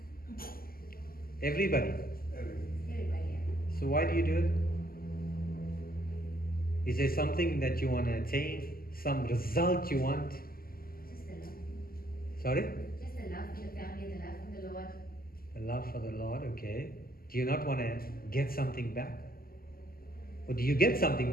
Everybody? Everybody. So why do you do it? Is there something that you want to attain? Some result you want? Just the love. Sorry? Just the love for the family, the love for the Lord. The love for the Lord, okay. Do you not want to get something back? Or do you get something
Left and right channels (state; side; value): late; right; 0.42 ms